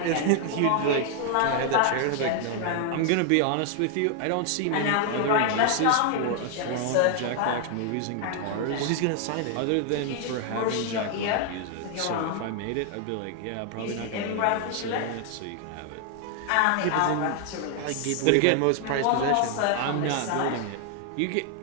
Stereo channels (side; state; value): both; different; correlation 0.00